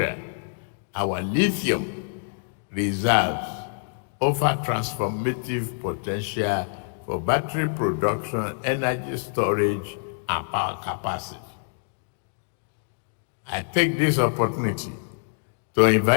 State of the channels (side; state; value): right; silent; digital silence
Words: our lithium reserves offer transformative potential for battery production, energy storage, and power capacity. I take this opportunity to